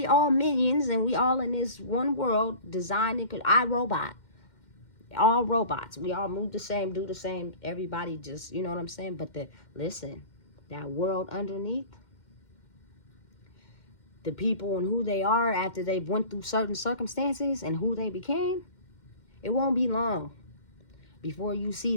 all minions and we all in this one world designed and iRobot, all robots, we all move the same, do the same, everybody just, you know what I'm saying? But listen, that world underneath, the people and who they are after they've went through certain circumstances and who they became, it won't be long before you see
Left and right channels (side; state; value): right; late; 2.1 ms